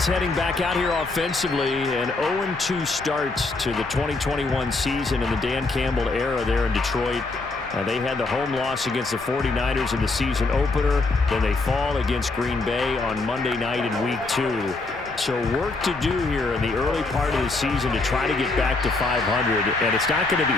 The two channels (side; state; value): right; quieter; 3.5 dB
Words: heading back out here offensively, an 0-2 start to the 2021 season in the Dan Campbell era there in Detroit. They had the home loss against the 49ers in the season opener. Then they fall against Green Bay on Monday night in Week 2. So work to do here in the early part of the season to try to get back to 500. And it's not going to be